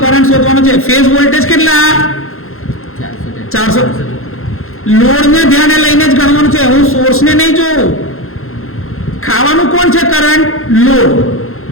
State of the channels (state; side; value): late; right; 0.62 ms